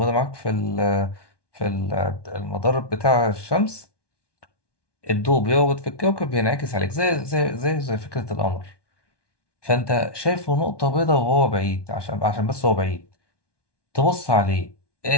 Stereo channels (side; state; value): right; late; 1.2 ms